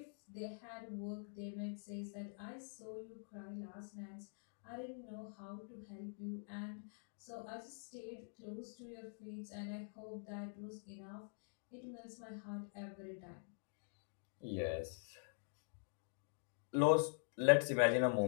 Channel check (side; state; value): right; silent; digital silence